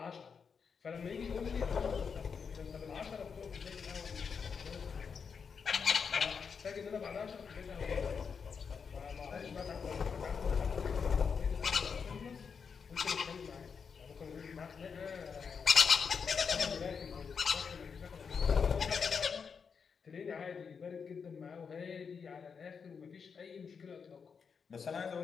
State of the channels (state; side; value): quieter; right; 6.0 dB